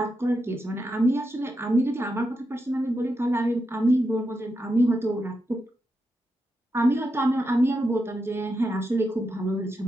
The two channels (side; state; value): both; normal; correlation 0.86